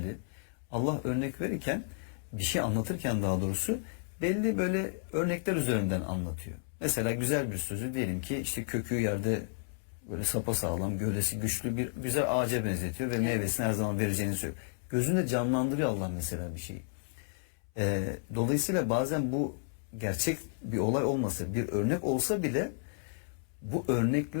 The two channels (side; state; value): right; silent; 56 dB below the other